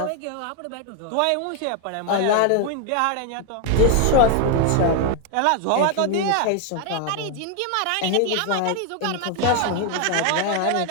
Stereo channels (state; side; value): different; both; correlation 0.00